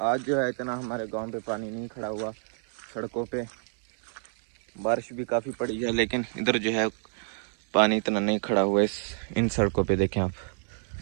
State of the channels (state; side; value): silent; left; 58 dB below the other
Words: आज जो है इतना हमारे गांव पे पानी नहीं खड़ा हुआ सड़कों पे। बारिश भी काफ़ी पड़ी है लेकिन इधर जो है पानी इतना नहीं खड़ा हुआ है इन सड़कों पे। देखें आप,